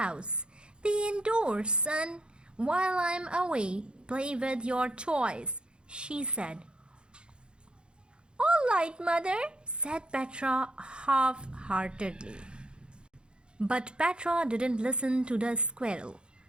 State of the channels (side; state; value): left; late; 0.052 ms